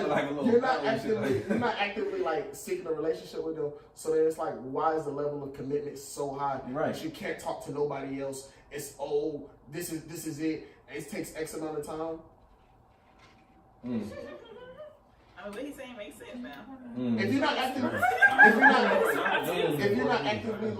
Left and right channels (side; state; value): both; identical; correlation 1.00